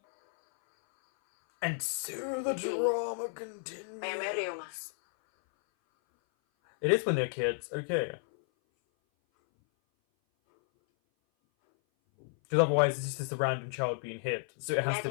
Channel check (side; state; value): right; silent; 56 dB below the other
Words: And so the drama continues. It is when they're kids, okay. Because otherwise it's just a random child being hit, so it has to